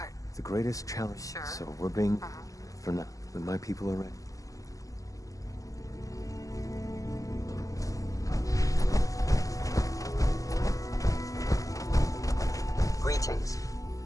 The greatest challenge, Sure. so we're being... for now, when my people are ready. Greetings.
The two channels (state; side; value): late; right; 0.16 ms